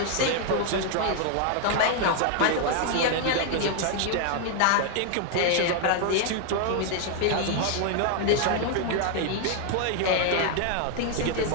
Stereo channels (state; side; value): different; both; correlation 0.00